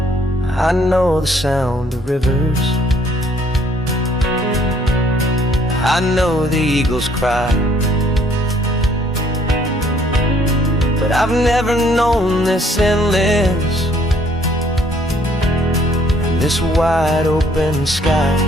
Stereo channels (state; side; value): normal; both; correlation 0.63